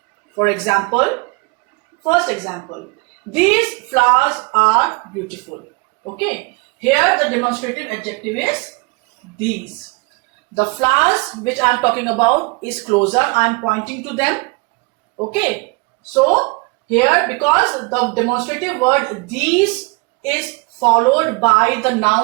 For example, first example, these flowers are beautiful. Okay, here the demonstrative adjective is these. The flowers which I am talking about is closer. I am pointing to them. Okay. So here, because the demonstrative word these is followed by the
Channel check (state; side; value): quieter; left; 28.9 dB